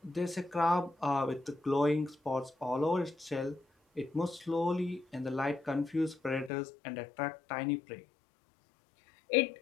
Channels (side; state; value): right; drops out; at 6.5 s